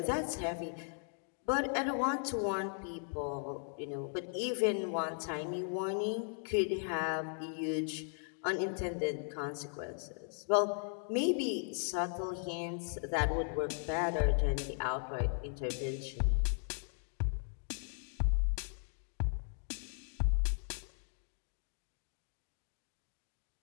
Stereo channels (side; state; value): right; silent; 53 dB below the other